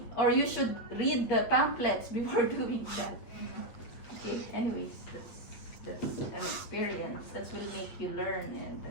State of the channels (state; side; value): late; right; 8.9 ms